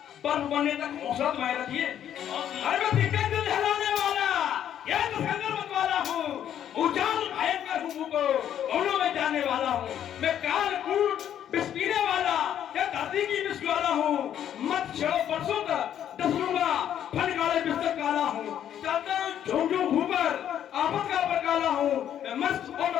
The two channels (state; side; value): quieter; right; 10.2 dB